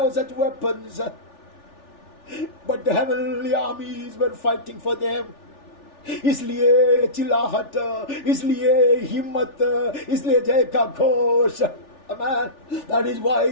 such weapons. But the heavenly armies were fighting for them. इसलिए चिल्लाहट, इसलिए हिम्मत, इसलिए जय का Ghosh, Amen. That is why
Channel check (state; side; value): late; right; 3.4 ms